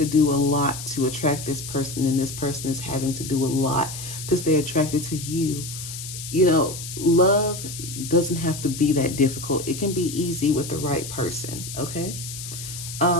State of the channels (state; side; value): noise; left; hiss, 9 dB below the sound